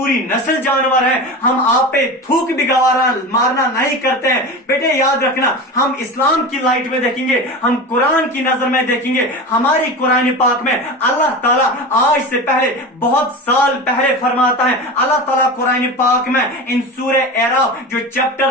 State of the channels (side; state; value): both; normal; correlation 0.27